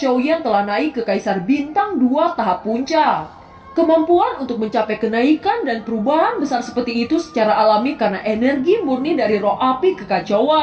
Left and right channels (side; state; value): both; identical; correlation 1.00